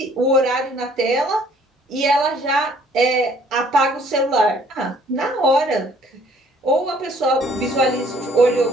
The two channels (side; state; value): both; normal; correlation 0.59